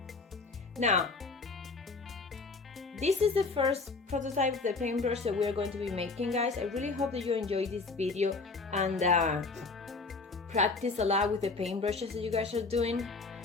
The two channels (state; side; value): quieter; right; 4.0 dB